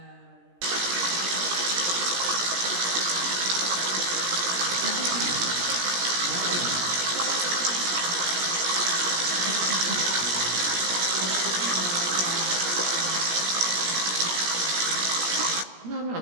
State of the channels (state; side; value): late; left; 17 ms